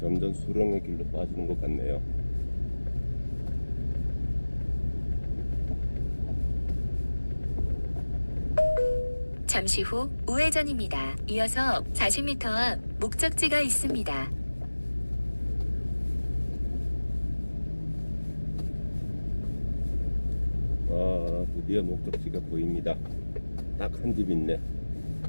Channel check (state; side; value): inverted; both; correlation -1.00